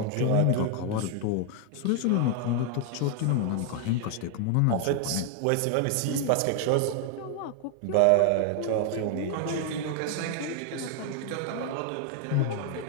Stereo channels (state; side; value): different; both; correlation 0.00